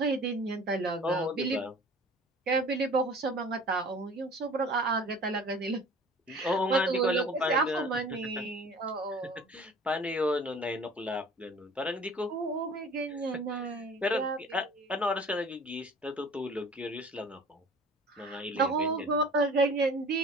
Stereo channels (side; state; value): both; normal; correlation 0.45